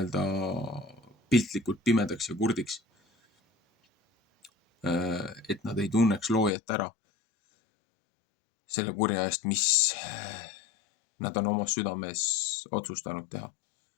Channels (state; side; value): drops out; right; at 6.5 s